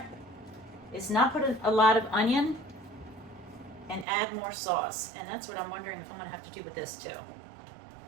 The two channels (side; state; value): left; drops out; at 4.0 s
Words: is not put a lot of onion and add more sauce. And that's what I'm wondering if I'm gonna have to do with this too.